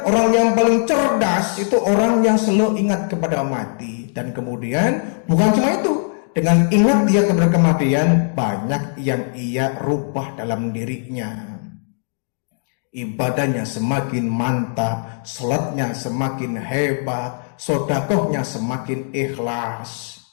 orang yang paling cerdas itu orang yang selalu ingat kepada mati. Dan kemudian bukan cuma itu, dengan ingat dia kepada kematian, banyak yang ia rubah dalam dirinya. Ibadahnya semakin mantap, salatnya semakin hebat, sedekahnya semakin ikhlas,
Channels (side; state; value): right; silent; digital silence